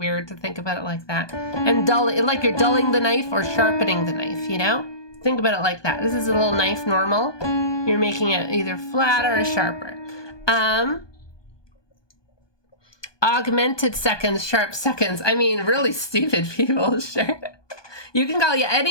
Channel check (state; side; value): late; right; 1.2 ms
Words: to think about it like that. And dull, like you're dulling the knife or sharpening the knife, you know? Think about it like that. This is a little knife normal. You're making it either flatter or sharper. Augmented seconds, sharp seconds. I mean, really stupid people, sure. You can call